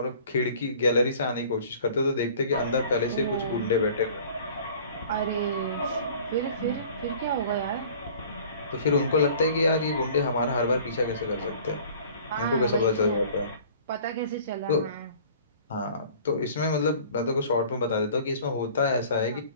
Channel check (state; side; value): inverted; both; correlation -0.48